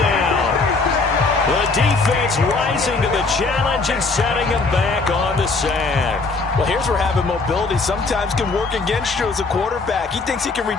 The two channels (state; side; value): quieter; right; 3.9 dB